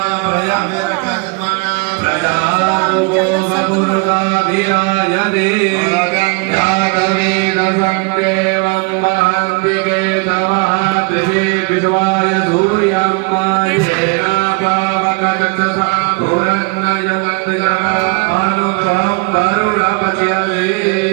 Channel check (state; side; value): quieter; left; 30.1 dB